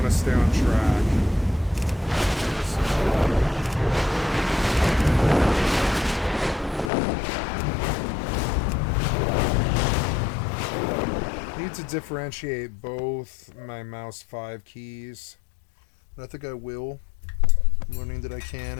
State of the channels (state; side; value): drops out; right; at 6.9 s